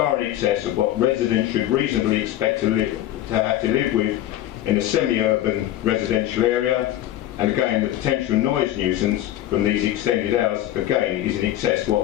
in excess of what residents should reasonably expect to have to live with in a semi-urban residential area, and again the potential noise nuisance from these extended hours again is in excess of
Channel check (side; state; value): right; quieter; 13.3 dB